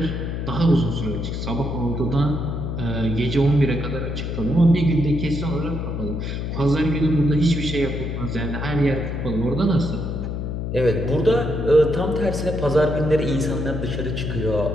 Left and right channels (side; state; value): left; noise; hum, 3 dB below the sound